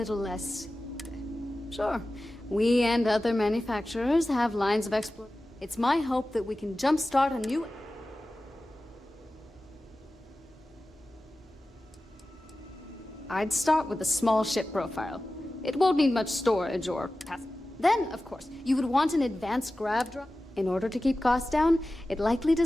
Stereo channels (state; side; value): normal; both; correlation 0.95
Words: less... Sure, we and other manufacturers have lines of exploration. It's my hope that we can jumpstart a new... I'd start with a small ship profile. It won't need much storage or... Then, of course, you would want an advanced grav drive. In order to keep costs down, it likely